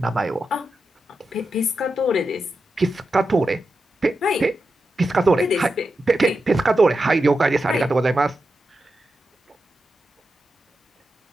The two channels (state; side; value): normal; both; correlation 0.89